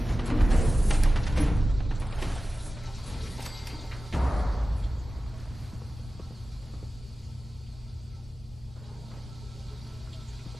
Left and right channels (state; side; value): normal; both; correlation 0.95